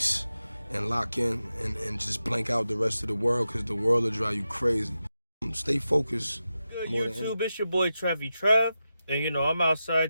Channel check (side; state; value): both; inverted; correlation -0.91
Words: and lock in and just blank out the rest of the world, because the world will drive you crazy. Stay focused. Good More than YouTube, it's your boy Trevi Trev, and I'm